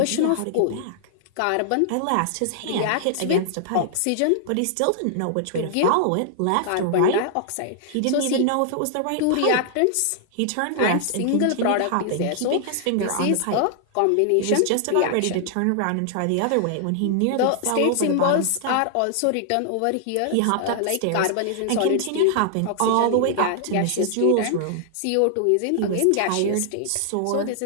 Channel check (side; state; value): both; different; correlation -0.01